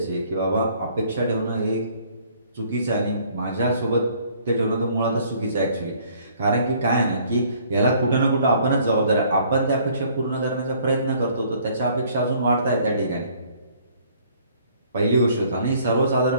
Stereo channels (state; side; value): inverted; both; correlation -0.60